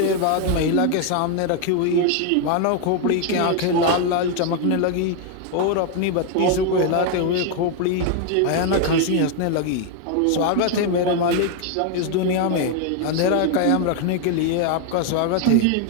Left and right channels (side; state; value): both; different; correlation 0.01